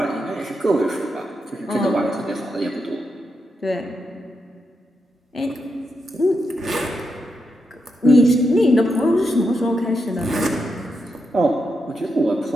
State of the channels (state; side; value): normal; both; correlation 0.84